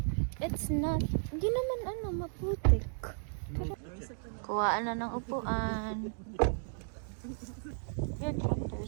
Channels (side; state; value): left; silent; digital silence